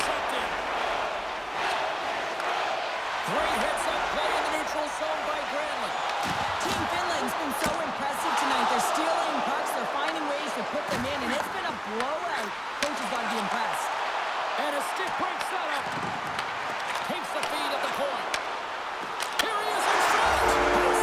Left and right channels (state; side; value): identical; both; correlation 1.00